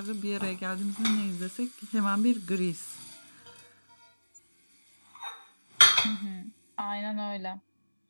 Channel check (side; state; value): both; inverted; correlation -1.00